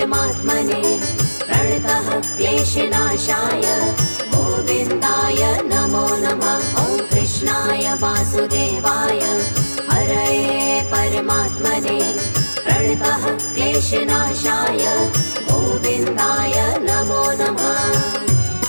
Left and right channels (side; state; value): both; inverted; correlation -1.00